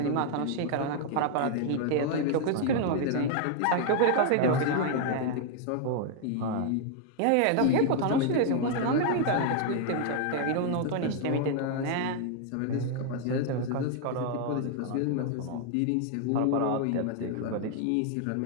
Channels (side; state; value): both; different; correlation 0.00